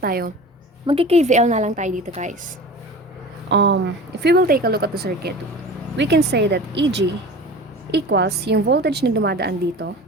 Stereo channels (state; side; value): normal; both; correlation 0.37